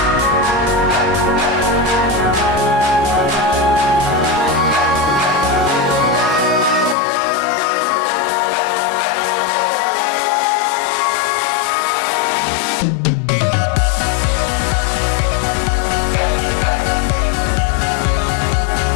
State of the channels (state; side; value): drops out; right; at 7.0 s